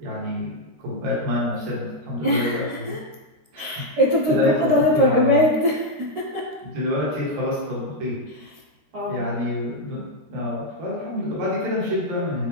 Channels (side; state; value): left; late; 13 ms